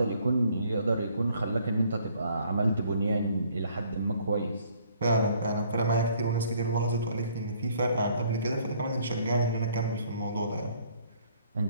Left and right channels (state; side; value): inverted; both; correlation -0.62